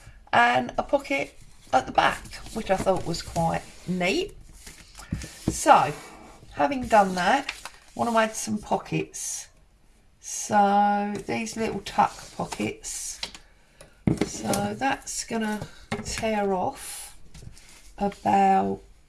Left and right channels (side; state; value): both; identical; correlation 1.00